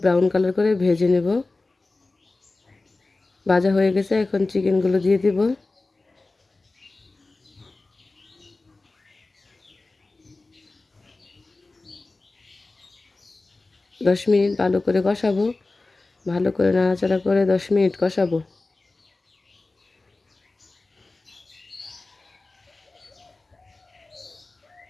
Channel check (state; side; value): quieter; right; 3.3 dB